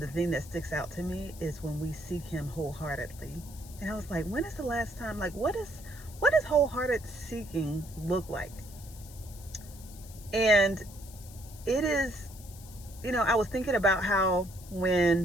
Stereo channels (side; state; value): left; noise; hiss, 19 dB below the sound